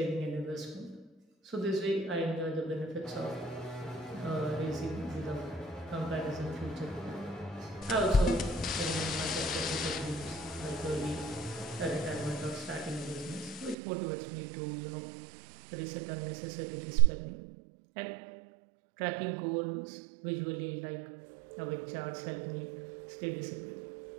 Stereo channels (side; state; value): left; drops out; at 13.8 s